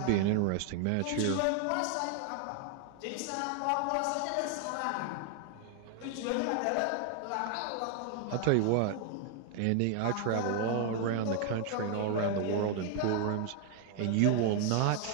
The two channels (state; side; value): different; both; correlation 0.00